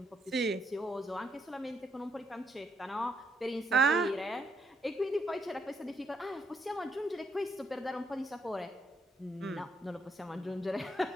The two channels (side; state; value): both; normal; correlation 0.75